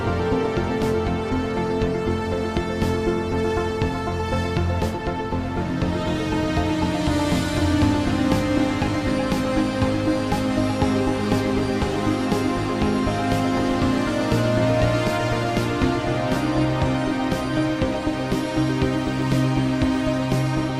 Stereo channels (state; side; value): identical; both; correlation 1.00